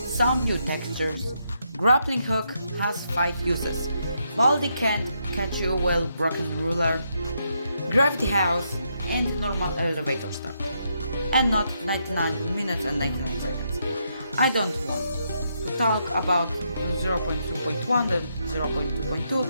some new textures, grappling hook has 5 uses, Baldi can catch you well broken ruler, gravity house, and normal elevator stuff, and not 99 minutes and 99 seconds. I don't want to talk about 0.2.1 and 0.2.2,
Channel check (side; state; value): both; inverted; correlation -0.79